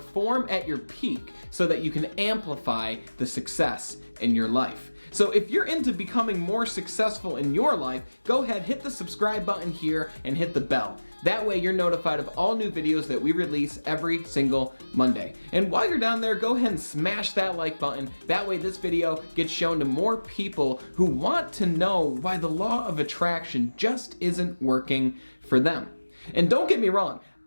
at your peak so that you can amplify the success in your life. So if you're into becoming more successful in your life, go ahead, hit the subscribe button here and hit the bell. That way you're notified of all new videos that we release every single Monday. And while you're down there, go ahead and smash that like button. That way this video gets shown to more people who want to know why the law of attraction just isn't working for them. And don't get me wrong,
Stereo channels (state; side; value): inverted; both; correlation -1.00